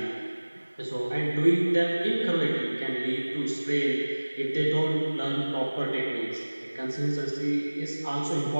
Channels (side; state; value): both; inverted; correlation -1.00